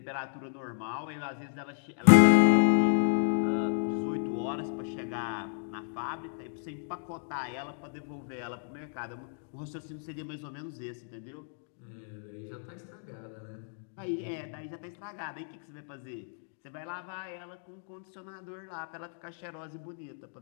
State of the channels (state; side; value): silent; right; digital silence